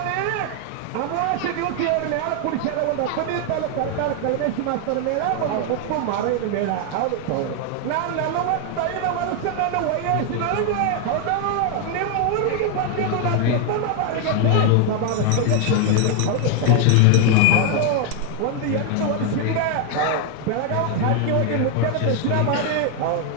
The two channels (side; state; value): both; different; correlation 0.00